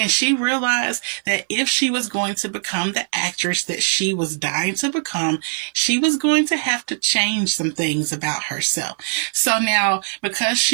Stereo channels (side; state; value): left; silent; 65 dB below the other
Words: she realized that if she was going to become the actress that she was dying to become, she was going to have to change some things about herself. So now, because